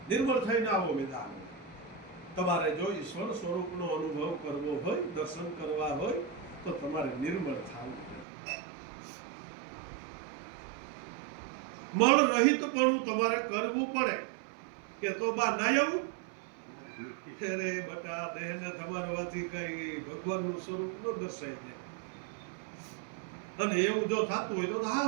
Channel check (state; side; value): drops out; left; at 8.2 s